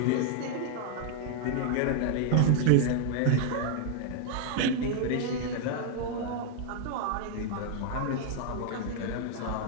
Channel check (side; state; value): both; different; correlation 0.00